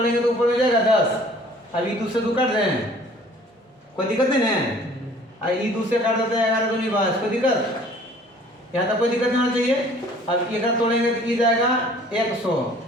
तो ऊपर हो जाएगा 10। अब ई 2 से 2 काट दें कोई दिक्कत नहीं ना। ई 2 से काट देते हैं 11 दूनी 22 कोई दिक्कत यहाँ तक कोई दिक्कत नहीं होना चाहिए। अब ये अगर तोड़ेंगे तो ये जाएगा 100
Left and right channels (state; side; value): normal; both; correlation 0.53